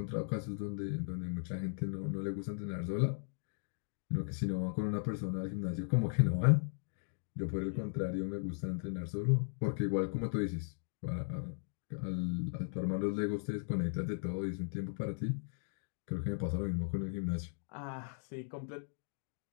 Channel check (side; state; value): right; silent; digital silence